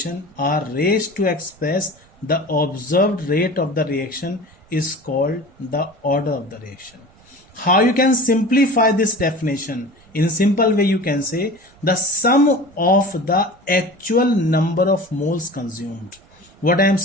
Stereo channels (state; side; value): noise; right; rumble, 29 dB below the sound